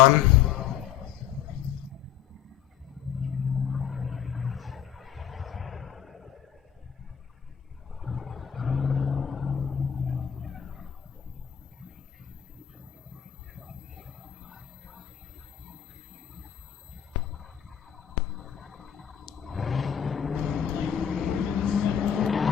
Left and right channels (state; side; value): quieter; right; 9.4 dB